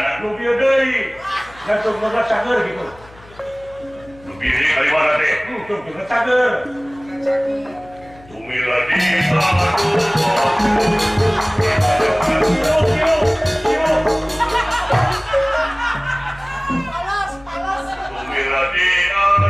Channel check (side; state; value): left; noise; hum, 24 dB below the sound